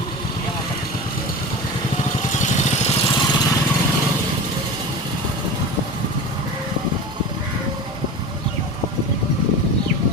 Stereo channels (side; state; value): both; normal; correlation 0.30